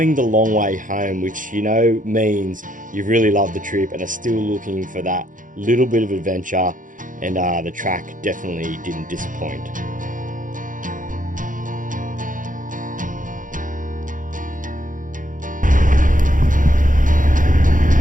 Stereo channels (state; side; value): late; left; 0.38 ms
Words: the long way home, which you know means you've really loved the trip and are still looking for that little bit of adventure, and the track definitely didn't disappoint.